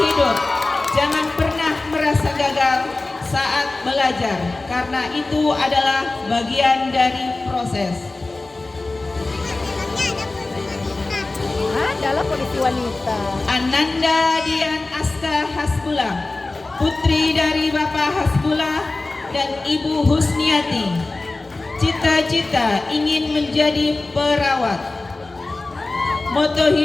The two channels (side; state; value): right; quieter; 3.2 dB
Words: jangan pernah merasa gagal saat belajar, karena itu adalah bagian dari proses. Adalah polisi wanita. Ananda Dian Aska Hasbullah, putri dari Bapak Hasbullah dan Ibu Husniati. Cita-cita ingin menjadi perawat. Moto